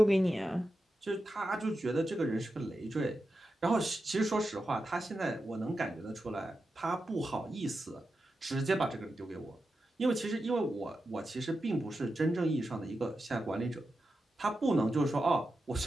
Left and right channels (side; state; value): both; normal; correlation 0.90